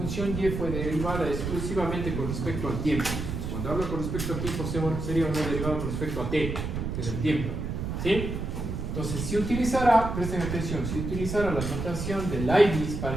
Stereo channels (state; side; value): noise; right; rumble, 4 dB below the sound